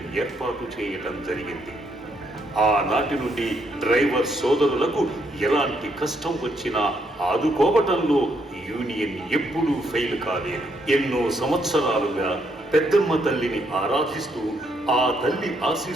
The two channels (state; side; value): normal; both; correlation 0.74